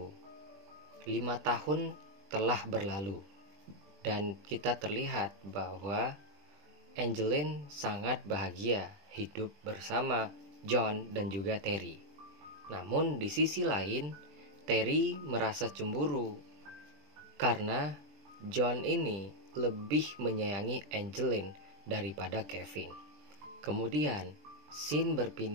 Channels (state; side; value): late; left; 20 ms